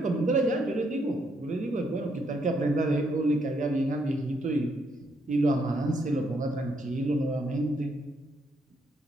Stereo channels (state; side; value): normal; both; correlation 0.74